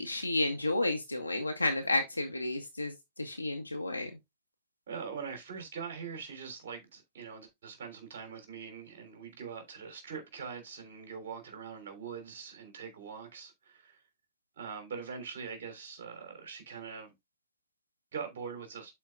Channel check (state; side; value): inverted; both; correlation -0.77